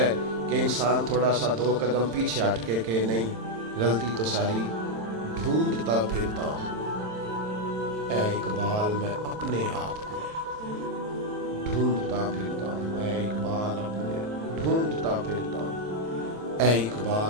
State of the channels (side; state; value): left; late; 27 ms